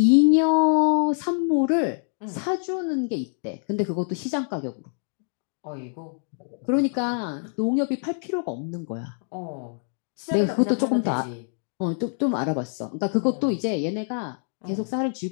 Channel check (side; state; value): right; silent; 58 dB below the other